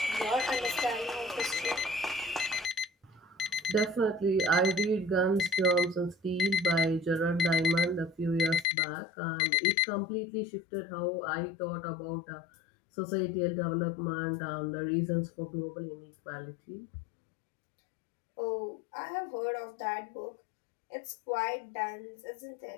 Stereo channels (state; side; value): drops out; right; at 8.7 s